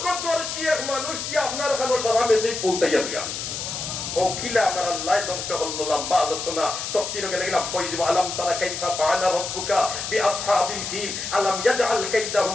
এক মানুষ দিয়ে আপনার কাছে সারা মেসেজ পৌঁছাইয়া দিয়া ও কিলা আমার আল্লাহ ধ্বংস করলো লম্বা আলোচনা তাফসীরে গেলাম কইব আলাম তারা কাইফা ফাআলা রাব্বুকা বিআসহাবিল ফিল আলাম ইয়াজআল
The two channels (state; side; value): noise; left; hiss, 5 dB below the sound